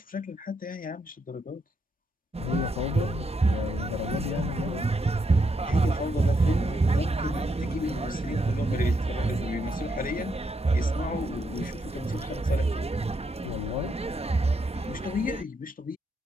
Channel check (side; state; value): both; normal; correlation 0.78